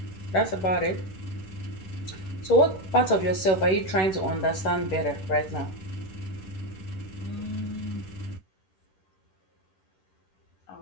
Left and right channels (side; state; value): right; late; 10 ms